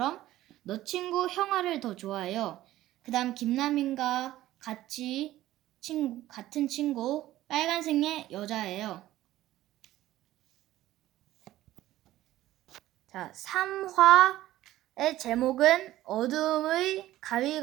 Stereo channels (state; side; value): quieter; left; 14.9 dB